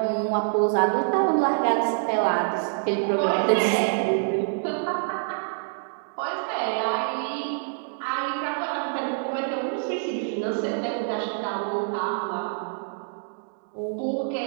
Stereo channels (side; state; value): left; silent; digital silence